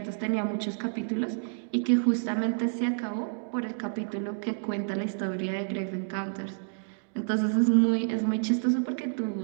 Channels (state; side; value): silent; left; digital silence